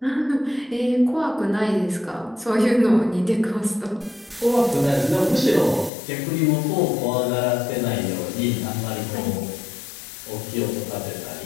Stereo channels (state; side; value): drops out; right; at 5.9 s